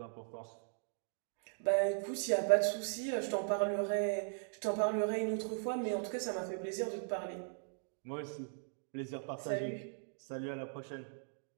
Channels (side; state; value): left; silent; digital silence